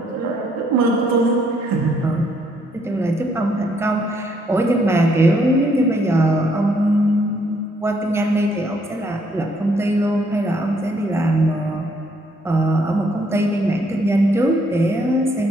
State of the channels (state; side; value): normal; both; correlation 0.69